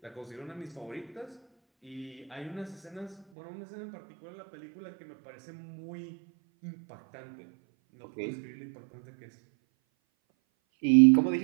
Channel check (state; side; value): drops out; left; at 3.2 s